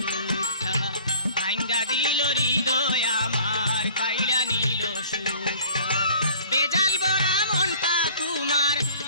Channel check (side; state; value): both; inverted; correlation -0.48